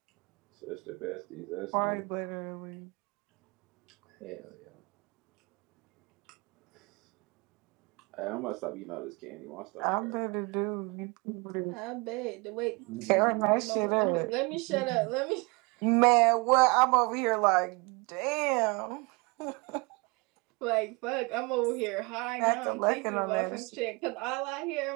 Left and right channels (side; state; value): left; quieter; 28.3 dB